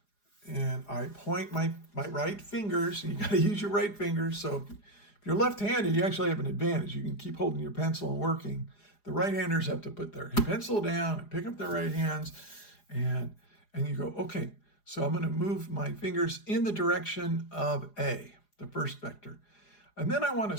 and I point my right fingers, and you got to use your right fingers. So if you're left-handed, you actually have an advantage. You can keep holding your pencil and working. The right-handers have to put their pencil down and pick up their right hands, and you go, okay, so I'm going to move my fingers in the direction of A, the first vector. And then I want to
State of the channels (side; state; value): right; late; 4.9 ms